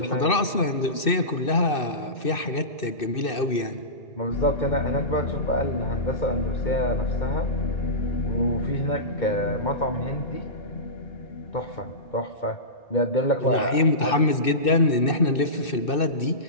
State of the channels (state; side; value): late; right; 2.6 ms